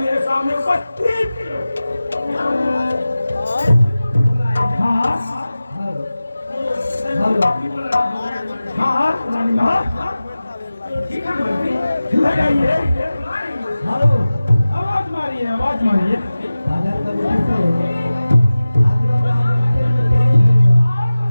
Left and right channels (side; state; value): both; inverted; correlation -0.96